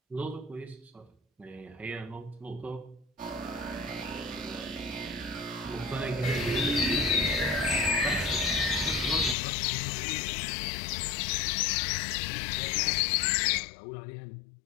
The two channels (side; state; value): right; drops out; at 9.3 s